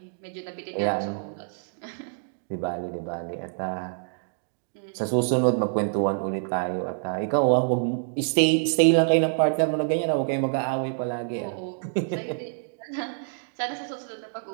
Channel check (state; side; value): silent; left; digital silence